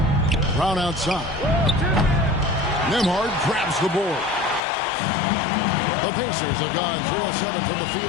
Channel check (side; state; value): right; drops out; at 4.6 s